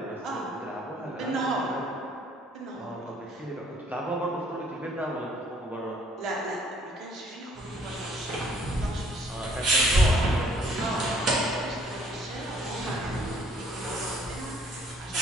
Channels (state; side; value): normal; both; correlation 0.61